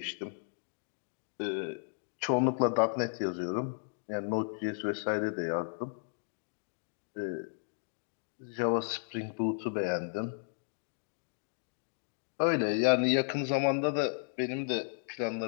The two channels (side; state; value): right; silent; digital silence